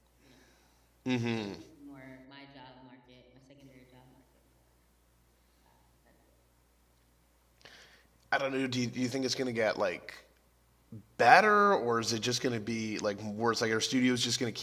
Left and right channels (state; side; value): identical; both; correlation 1.00